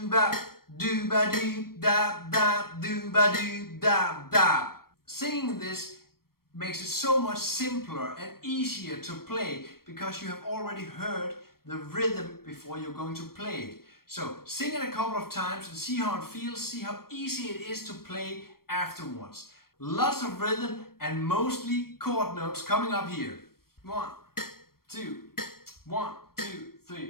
ba doo ba doo da da doo ba doo da da. Singing this makes it so much simpler and easier to play because you have already heard the rhythm before you're going to play it. So sing it a couple of times and see how it feels, see how easy it is to play afterwards. Lots of rhythm and mostly chord notes coming up here. 1, 2, 1, 2,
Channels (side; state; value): right; late; 0.94 ms